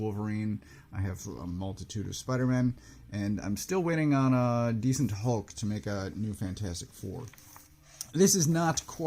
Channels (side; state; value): both; identical; correlation 1.00